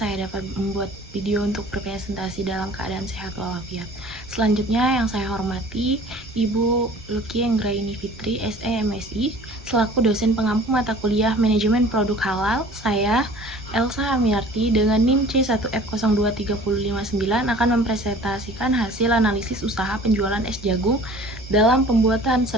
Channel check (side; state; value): both; normal; correlation 0.47